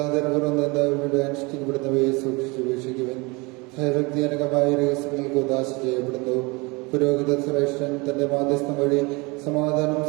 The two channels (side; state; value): left; quieter; 26.7 dB